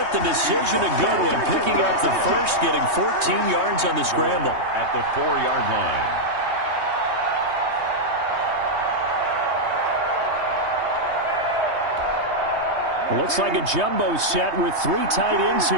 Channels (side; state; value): left; late; 3.2 ms